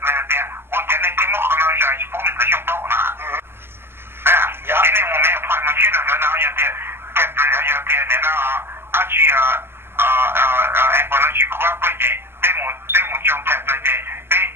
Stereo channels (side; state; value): left; late; 0.11 ms